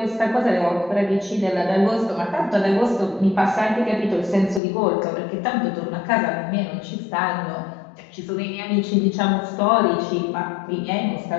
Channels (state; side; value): drops out; right; at 4.6 s